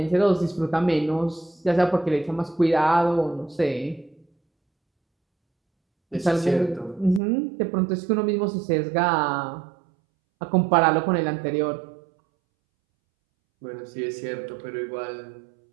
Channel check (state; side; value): drops out; left; at 7.2 s